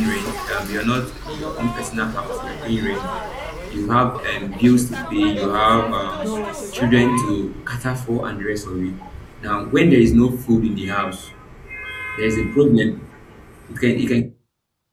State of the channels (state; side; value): identical; both; correlation 1.00